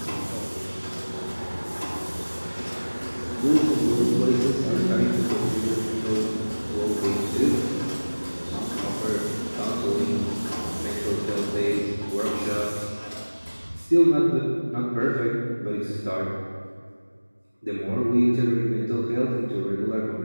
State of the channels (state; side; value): inverted; both; correlation -1.00